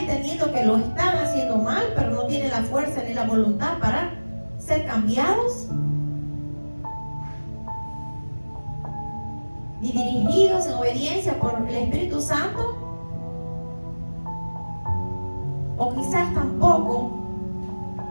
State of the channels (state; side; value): inverted; both; correlation -1.00